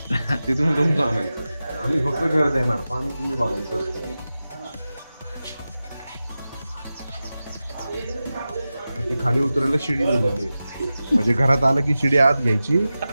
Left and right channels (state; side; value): inverted; both; correlation -0.94